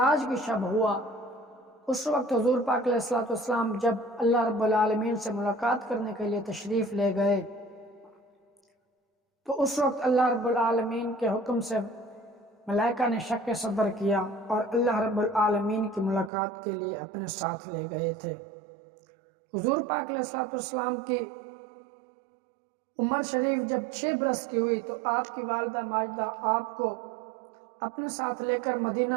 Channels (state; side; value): drops out; left; at 16.3 s